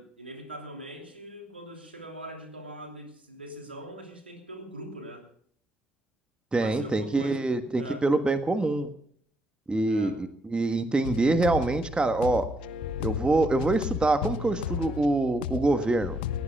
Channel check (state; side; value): normal; both; correlation 0.76